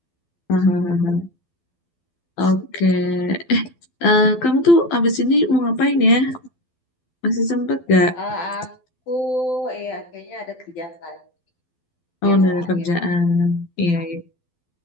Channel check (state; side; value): late; right; 12 ms